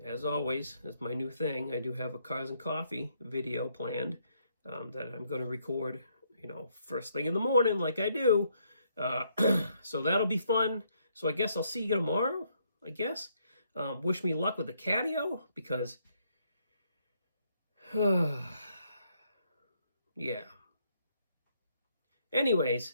always, as my new thing, I do have a Cars and Coffee video planned that I'm going to record, first thing in the morning like I do. So that'll be fun. So I guess I'll see you tomorrow, I guess. Wish me luck with the catio, because, yeah.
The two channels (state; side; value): inverted; both; correlation -0.72